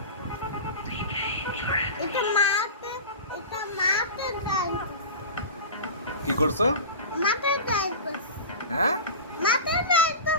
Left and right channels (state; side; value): inverted; both; correlation -0.31